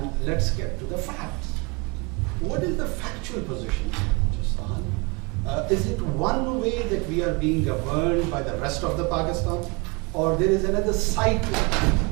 let's get to the facts. What is the factual position in Balochistan? Is it one way that we are being governed by the rest of the Pakistan, or there is another side to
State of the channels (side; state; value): left; quieter; 29.0 dB